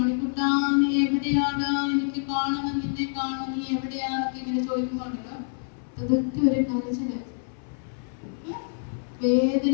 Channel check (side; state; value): right; silent; 60 dB below the other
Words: നീ എവിടെയാടാ, എനിക്ക് കാണണം, നിന്നെ കാണണം, നീ എവിടെയാന്നൊക്കെ ഇങ്ങനെ ചോദിക്കുമ്പോണ്ടല്ലോ ഇതൊക്കെ ഒരു കരച്ചില്.